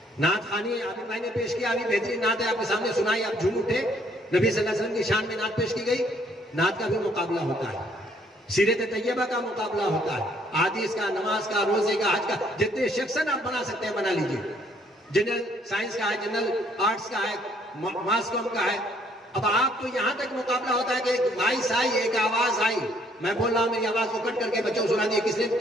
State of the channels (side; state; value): both; normal; correlation 0.65